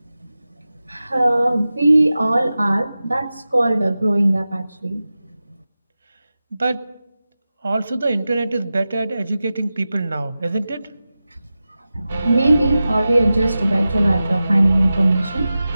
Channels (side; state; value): both; inverted; correlation -0.94